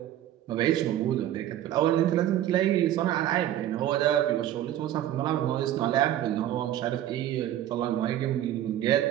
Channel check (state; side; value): quieter; left; 12.3 dB